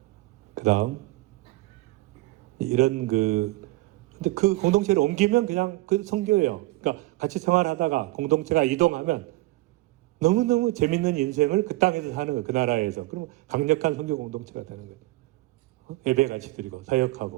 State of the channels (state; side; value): quieter; left; 19.6 dB